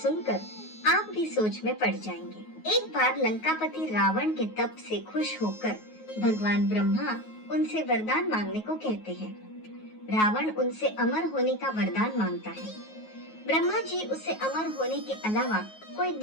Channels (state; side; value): late; right; 9.4 ms